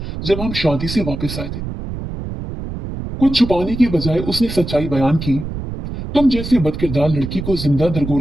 जब हम शादी से वापस आए थे। कुछ छुपाने की बजाय उसने सच्चाई बयान की। तुम जैसे बदकिरदार लड़की को जिंदा दरगोर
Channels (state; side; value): noise; right; rumble, 7 dB below the sound